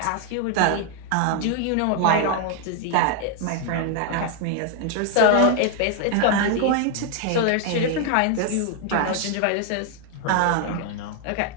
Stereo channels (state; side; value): different; both; correlation 0.00